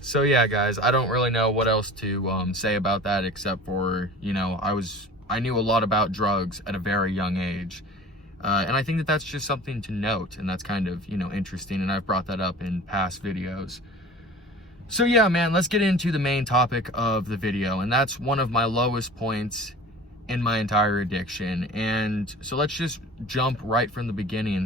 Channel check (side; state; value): both; normal; correlation 0.40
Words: So yeah, guys, I don't really know what else to say about that, except for, I knew a lot about drugs at a very young age. And I think that that's just something to note, and that's kind of, interesting, and I've brought that up in past videos. So yeah, man, let's get into the main topic of the video, and that's one of my lowest points in my entire addiction. And so let's just jump right from the